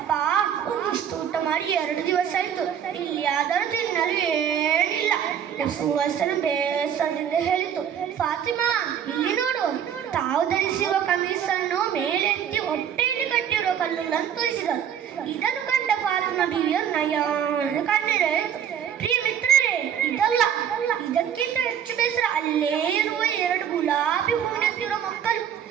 ಒಂದಿಷ್ಟು ಊಟ ಮಾಡಿ 2 ದಿವಸ ಆಯ್ತು, ಇಲ್ಲಿ ಆದರೂ ತಿನ್ನಲು ಏನಿಲ್ಲ. ಸುವಾಸನ ಬೇಸರದಿಂದ ಹೇಳಿತು. ಫಾತಿಮಾ ಇಲ್ಲಿ ನೋಡು, ತಾವು ಧರಿಸಿರುವ ಕಮೀಸನ್ನು ಮೇಲೆತ್ತಿ ಹೊಟ್ಟೆಯಲ್ಲಿ ಕಟ್ಟಿರುವ ಕಲ್ಲುಗಳನ್ನು ತೋರಿಸಿದರು. ಇದನ್ನು ಕಂಡ ಫಾತಿಮಾ ಬೀವಿಯ ನಯನ ಕಣ್ಣೀರಾಯಿತು. ಪ್ರಿಯ ಮಿತ್ರರೇ, ಇದಲ್ಲ, ಇದಕ್ಕಿಂತ ಹೆಚ್ಚು ಬೇಸರ ಅಲ್ಲೇ ಇರುವ 2 ಗುಲಾಬಿ ಹೂವಿನಂತಿರುವ ಮಕ್ಕಳು.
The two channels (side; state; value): left; quieter; 8.9 dB